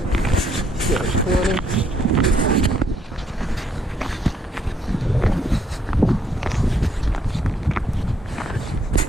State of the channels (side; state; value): both; normal; correlation 0.71